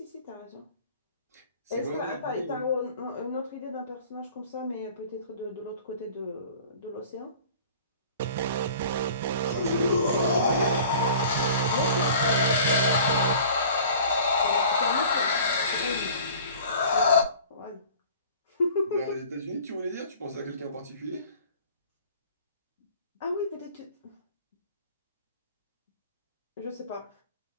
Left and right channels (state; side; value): inverted; both; correlation -0.46